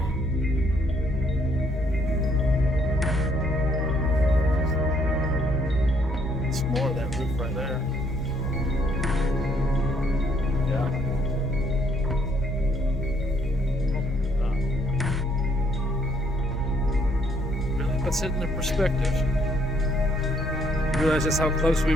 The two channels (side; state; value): both; normal; correlation 0.68